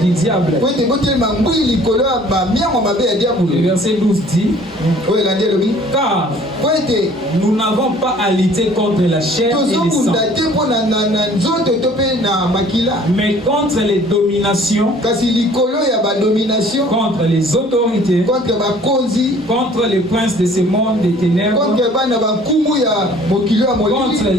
diable. Le verset 12 dit: car nous n'avons pas à lutter contre la chair et le sang, mais contre les dominations, contre les autorités, contre les princes de ce monde des ténèbres, contre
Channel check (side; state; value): both; normal; correlation 0.53